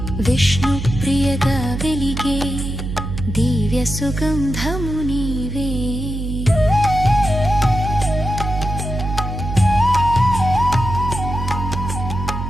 విష్ణు ప్రియగా వెలిగే దివ్య సుగంధము నీవే.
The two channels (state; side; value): noise; right; hum, 5 dB below the sound